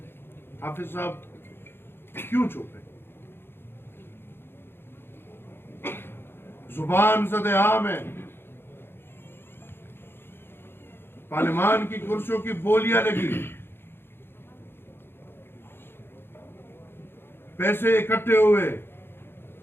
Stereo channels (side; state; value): right; late; 0.11 ms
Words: हाफिज साहब क्यों चुप है? जुबान सदेआम है, पार्लियामान की कुर्सियों की बोलियां लगी, पैसे इकट्ठे हुए,